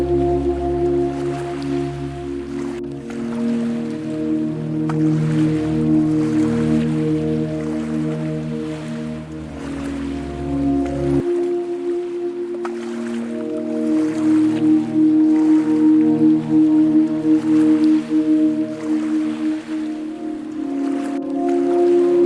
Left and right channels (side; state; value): both; identical; correlation 1.00